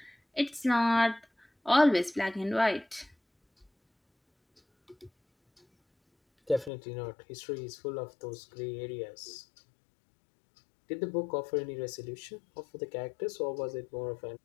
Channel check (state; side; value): drops out; right; at 6.7 s